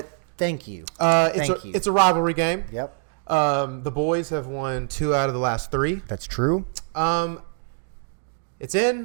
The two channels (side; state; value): left; silent; digital silence